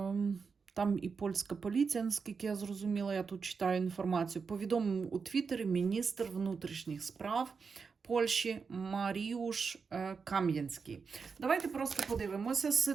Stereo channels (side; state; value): left; quieter; 5.3 dB